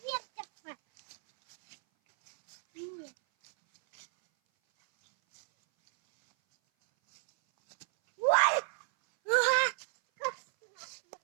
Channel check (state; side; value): silent; left; 57 dB below the other